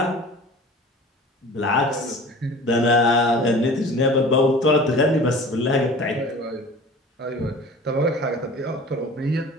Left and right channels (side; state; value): both; normal; correlation 0.42